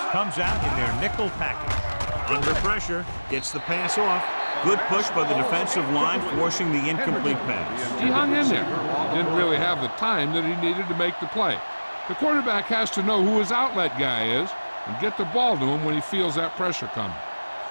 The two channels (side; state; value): both; inverted; correlation -1.00